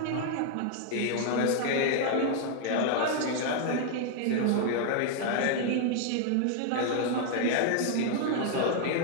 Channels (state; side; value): different; both; correlation 0.00